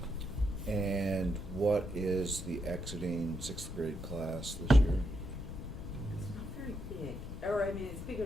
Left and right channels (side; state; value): left; noise; rumble, 9 dB below the sound